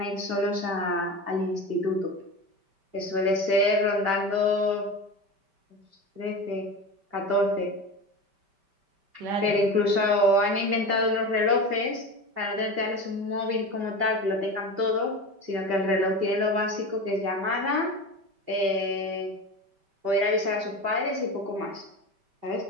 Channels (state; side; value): late; left; 5.1 ms